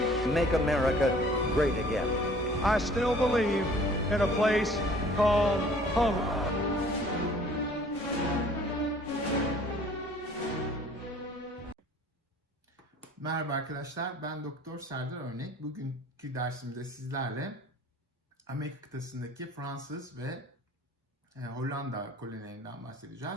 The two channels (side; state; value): both; normal; correlation 0.52